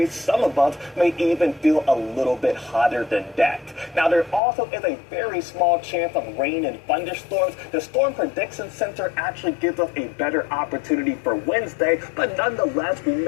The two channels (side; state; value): right; drops out; at 4.4 s